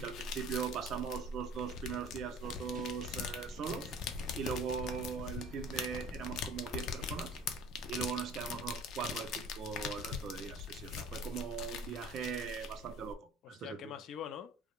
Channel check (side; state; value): both; normal; correlation 0.46